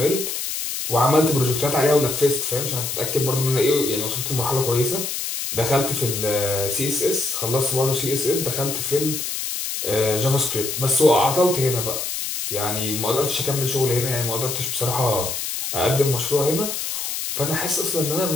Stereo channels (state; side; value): noise; left; hiss, 3 dB below the sound